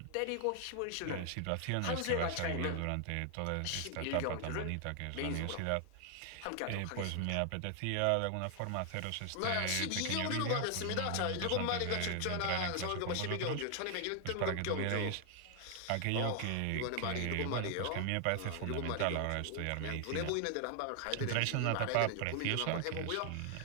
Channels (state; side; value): different; both; correlation 0.00